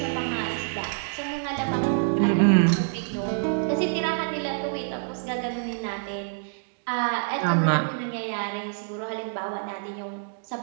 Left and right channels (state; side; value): silent; left; digital silence